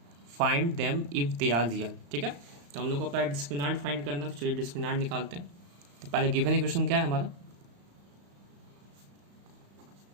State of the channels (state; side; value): late; left; 35 ms